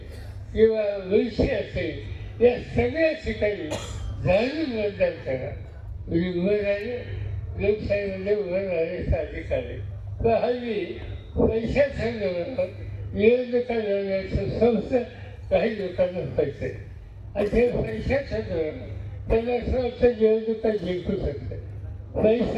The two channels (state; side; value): identical; both; correlation 1.00